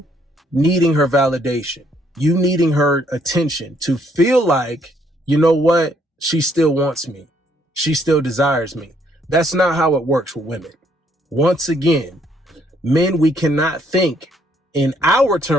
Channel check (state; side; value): normal; both; correlation 0.68